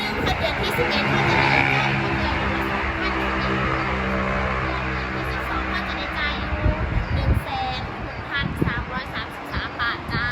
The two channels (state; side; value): identical; both; correlation 1.00